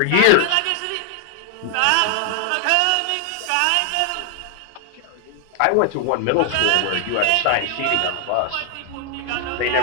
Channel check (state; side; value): different; both; correlation 0.00